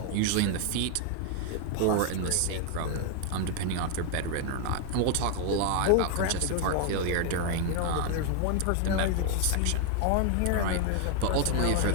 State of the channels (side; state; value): both; different; correlation 0.00